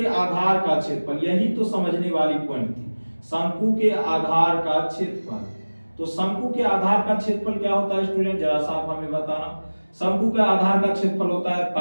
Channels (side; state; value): both; inverted; correlation -1.00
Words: आधार का क्षेत्रफल, यही तो समझने वाली पॉइंट थी, शंकु के आधार का क्षेत्रफल। तो शंकु के आधार का क्षेत्रफल क्या होता है स्टूडेंट? जरा सा आप हमें बताना। शंकु का आधार का क्षेत्रफल होता है